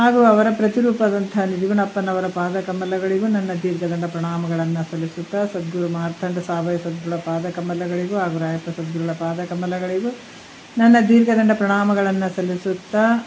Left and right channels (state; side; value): identical; both; correlation 1.00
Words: ಅವರ ಪ್ರತಿರೂಪದಂಥ ನಿಜಗುಣಪ್ಪನವರ ಪಾದಕಮಲಗಳಿಗೂ ನನ್ನ ದೀರ್ಘದಂಡ ಪ್ರಣಾಮಗಳನ್ನು ಸಲ್ಲಿಸುತ್ತಾ, ಸದ್ಗುರು ಮಾರ್ಥಂಡ ಸಾವಯ ಸದ್ಗುರುಳ ಪಾದಕಮಲಗಳಿಗೂ ಹಾಗೂ ರಾಯಪ್ಪ ಸದ್ಗುರುಳ ಪಾದಕಮಲಗಳಿಗೂ ನನ್ನ ದೀರ್ಘದಂಡ ಪ್ರಣಾಮಗಳನ್ನು ಸಲ್ಲಿಸುತ್ತಾ,